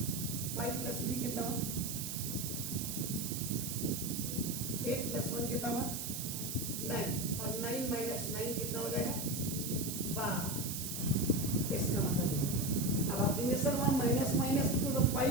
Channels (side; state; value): right; noise; hiss, 4 dB below the sound